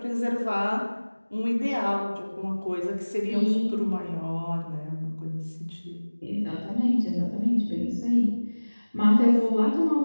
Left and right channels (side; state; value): both; inverted; correlation -1.00